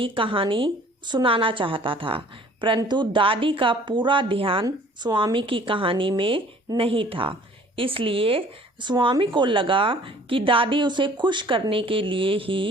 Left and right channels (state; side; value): normal; both; correlation 0.53